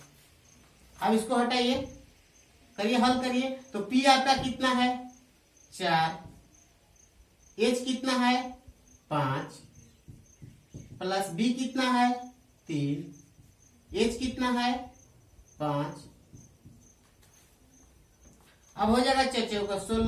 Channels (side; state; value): both; identical; correlation 1.00